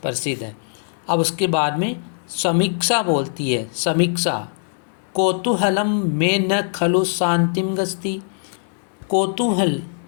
प्रसिद्ध है। अब उसके बाद में समीक्षा बोलती है, समीक्षा कौतूहलम में न खलु शांतिम गस्ती। कौतूहल,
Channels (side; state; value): right; silent; 65 dB below the other